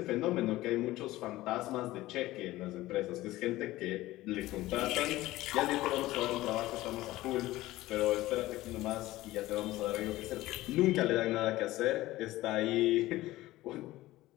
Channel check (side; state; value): right; quieter; 17.2 dB